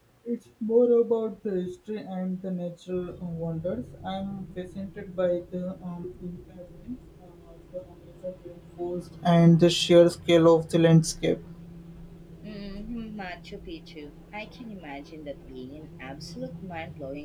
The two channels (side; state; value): both; identical; correlation 1.00